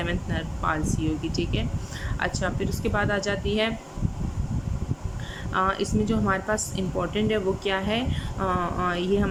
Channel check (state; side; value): identical; both; correlation 1.00